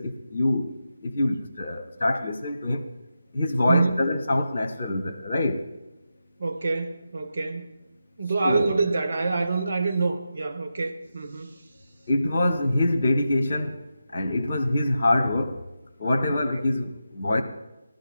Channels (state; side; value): inverted; both; correlation -0.89